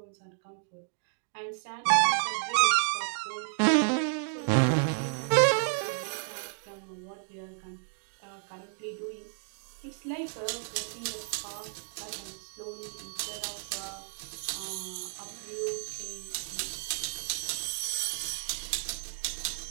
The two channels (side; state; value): left; silent; digital silence